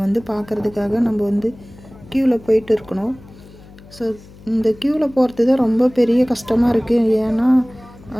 வந்து பார்க்குறதுக்காக நம்ம வந்து க்யூவில் போயிட்டு இருக்கணும். ஸோ இந்த க்யூவில் போகிறது தான் ரொம்ப பெரிய கஷ்டமாக இருக்குது. ஏன்னா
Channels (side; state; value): left; noise; hum, 22 dB below the sound